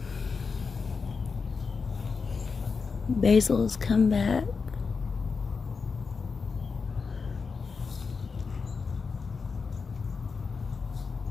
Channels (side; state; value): right; quieter; 5.0 dB